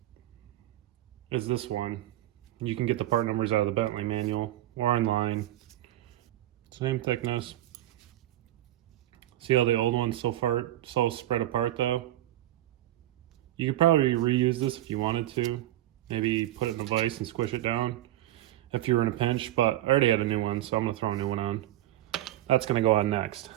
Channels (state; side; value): quieter; left; 14.4 dB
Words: as this one. You can get the part numbers out of the Bentley manual or online. Same thickness. See how the old one's so spread apart though? You could probably reuse this if you wanted to. Maybe put it in a vise and squish it down if you were in a pinch, but I already had a new one, so I'm gonna throw a new one on. That's gonna go on next.